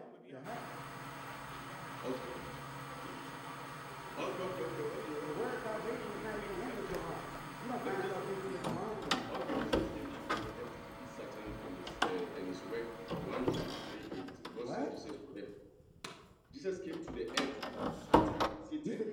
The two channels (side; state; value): both; identical; correlation 1.00